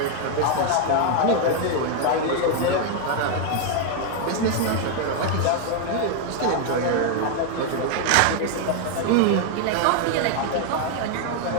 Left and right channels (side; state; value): both; different; correlation 0.00